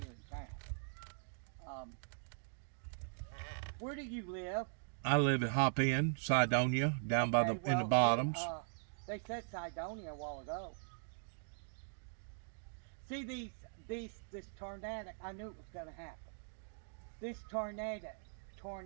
in town. Where do you live? I live at Hop Inn, Cydonia, down by Okay, in the well, bottoms. They said Cydonia a while ago. See this tornadic, I knew it was going to happen. This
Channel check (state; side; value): silent; left; digital silence